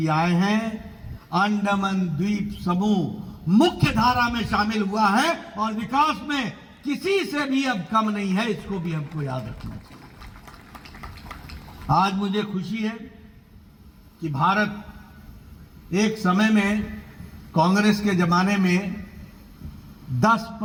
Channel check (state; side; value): identical; both; correlation 1.00